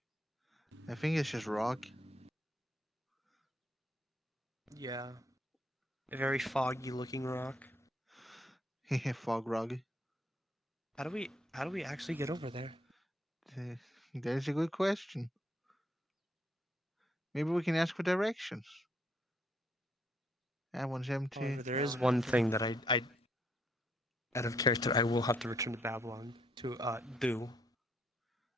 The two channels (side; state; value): both; normal; correlation 0.71